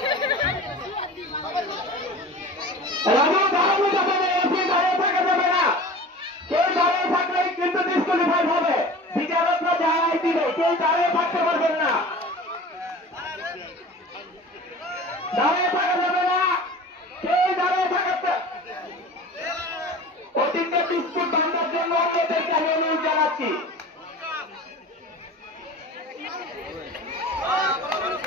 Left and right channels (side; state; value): both; normal; correlation 0.38